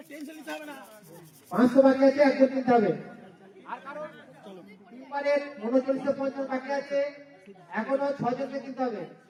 500 বাকি আছে, একজন কিনতে হবে। আর কারণ টিম্বারের 3950 বাকি আছে, এখনো 6জনকে কিনতে হবে।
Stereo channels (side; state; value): both; identical; correlation 1.00